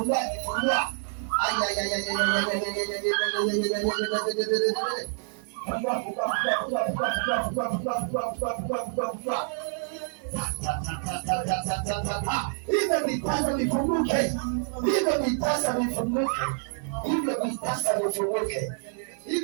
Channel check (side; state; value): left; silent; digital silence